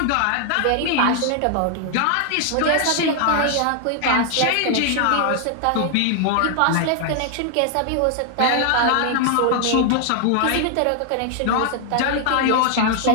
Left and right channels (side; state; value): both; different; correlation 0.00